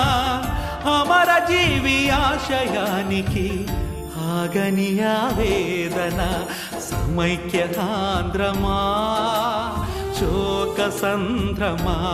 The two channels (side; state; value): both; identical; correlation 1.00